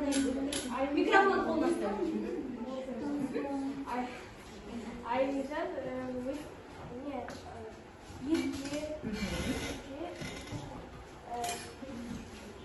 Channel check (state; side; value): identical; both; correlation 1.00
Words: микрофон қолдасты? Айымжан